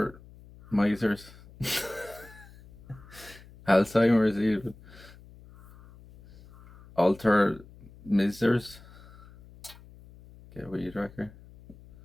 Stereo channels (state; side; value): noise; left; hum, 22 dB below the sound